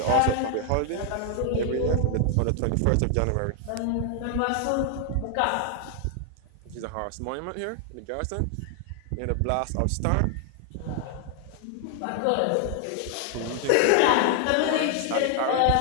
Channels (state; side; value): different; both; correlation 0.00